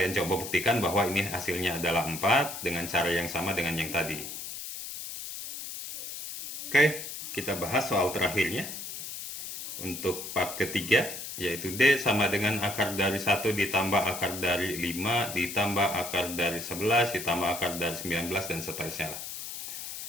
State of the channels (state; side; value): noise; left; hiss, 8 dB below the sound